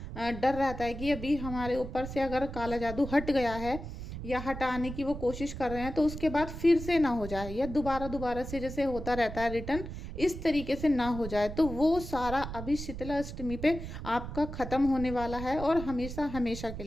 डर रहता है कि अभी हमारे ऊपर से अगर काला जादू हट गया है या हटाने की वो कोशिश कर रहे हैं तो उसके बाद फिर से ना हो जाए, या दोबारा दोबारा से जैसे होता रहता है रिटर्न, इस तरीके से ना हो जाए। तो वो सारा अभी शीतला अष्टमी पे आपका ख़त्म होने वाला है, और हमेशा हमेशा के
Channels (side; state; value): right; noise; rumble, 9 dB below the sound